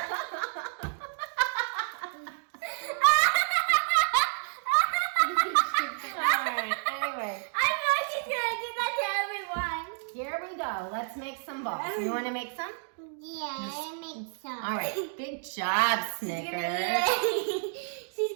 Here we go. Let's make some balls. You want to make some? Yeah, I make some. All right. Good job, Snickers. She's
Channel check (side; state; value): left; silent; 58 dB below the other